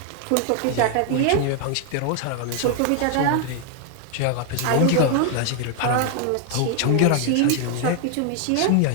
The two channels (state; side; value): different; both; correlation 0.00